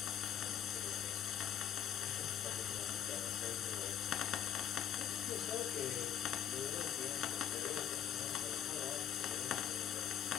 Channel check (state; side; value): quieter; right; 9.6 dB